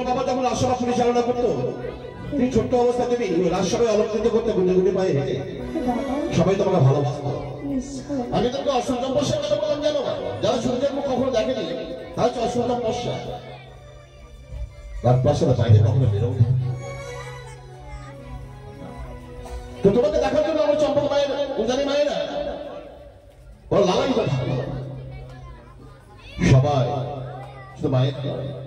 বাবা যখন রাজসভা পরিচালনা করতো, তুমি ছোট্ট অবস্থায় তুমি রাজসভায় অলঙ্কৃত করতে গুনে গুনে পায়ে হেঁটে সবাই তোমাকে ভালোবাসতো। আমি তোমাকে অসংখ্য পশ্চার কথা বললাম জানো? যারা সূর্যের মুখ কখনো দেখেনি তারা হচ্ছে অসংখ্য পশ্চা। রাজপ্রাসাদের বাইরে কখনো বেরোবে। তো তোমাকে দেখার জন্য আমার চম্পক মায়ের উজানি মায়েরা ওরা লালাই কথা সবাই, শুধু মায়ের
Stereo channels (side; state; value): both; identical; correlation 1.00